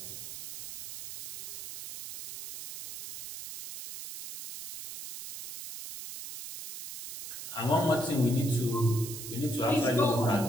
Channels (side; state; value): right; noise; hiss, 10 dB below the sound